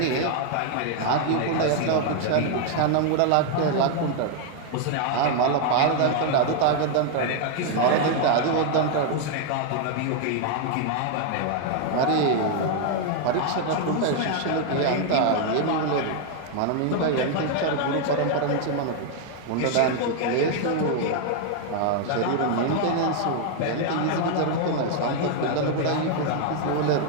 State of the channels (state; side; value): different; both; correlation 0.00